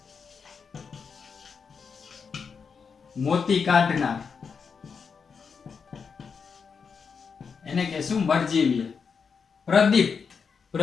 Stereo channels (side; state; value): right; quieter; 5.8 dB